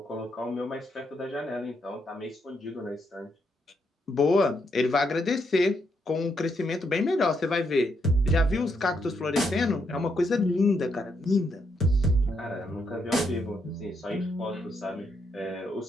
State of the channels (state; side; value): normal; both; correlation 0.78